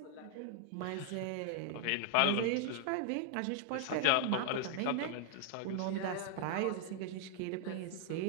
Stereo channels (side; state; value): both; different; correlation 0.00